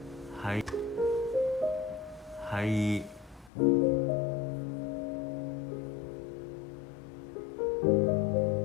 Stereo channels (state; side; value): drops out; right; at 3.5 s